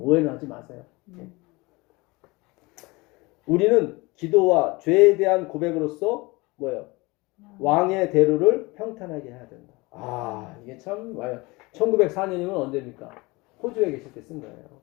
하지 마세요. 예. 우리는 기도와 죄에 대한 고백으로서 뭐예요? 왕의 대로를 평탄하게 해야 된다. 아 이게 참 와요. 1904년이면 언제입니까? 호주에 계실 때 쓴 거예요.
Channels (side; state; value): right; quieter; 24.1 dB